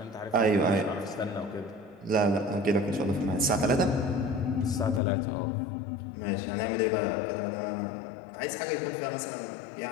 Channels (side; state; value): right; drops out; at 5.0 s